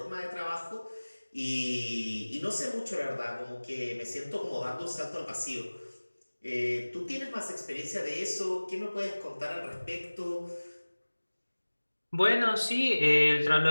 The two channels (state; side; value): inverted; both; correlation -1.00